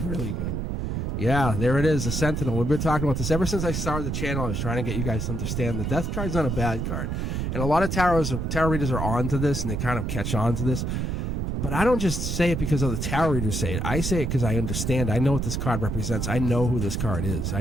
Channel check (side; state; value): right; noise; rumble, 1 dB below the sound